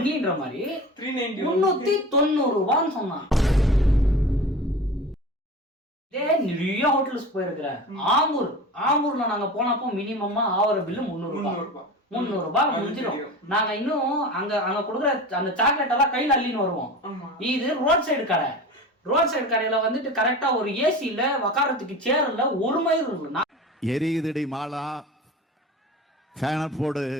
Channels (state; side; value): normal; both; correlation 0.33